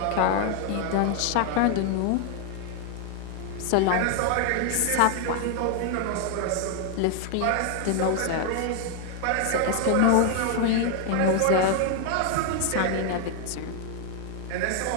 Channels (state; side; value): different; both; correlation 0.01